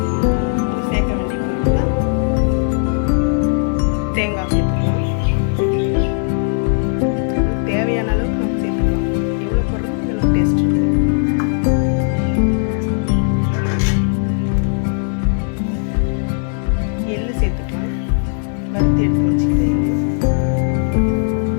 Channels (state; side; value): silent; right; digital silence